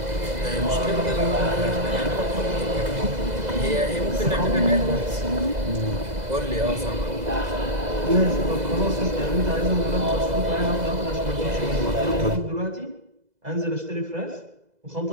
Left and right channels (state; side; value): late; left; 2.0 ms